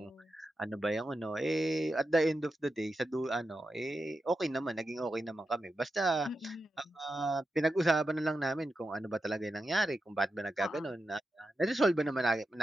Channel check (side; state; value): both; normal; correlation 0.89